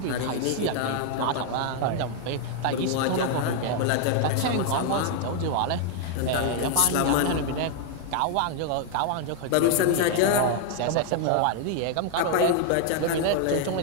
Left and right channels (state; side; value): different; both; correlation 0.00